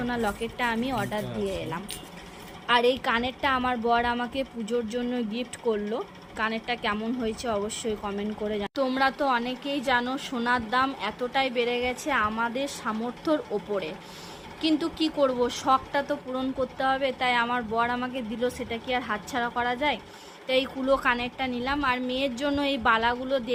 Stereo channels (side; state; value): both; identical; correlation 1.00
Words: লকেটটা আমি অর্ডার দিয়ে এলাম। আর এই কানেরটা আমার বর আমাকে পুজোর জন্য গিফট করলো। কানেরটা কেমন হয়েছে অবশ্যই কমেন্ট করে তোমরা তো অনেকেই জানো সোনার দাম এতটাই বেড়ে গেছে আমাদের সামর্থ্যর ওপরে, কিন্তু কি করব, শখটা তো পূরণ করতে হবে, তাই আমার বর আমাকে দিল, সেটা কি আর হাতছাড়া করা যায়। তাই এই কুলো কানেরটা নিলাম। আর মেয়ের জন্য এই বালাগুলো